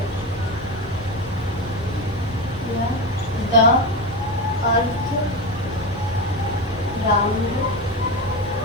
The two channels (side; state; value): both; normal; correlation 0.18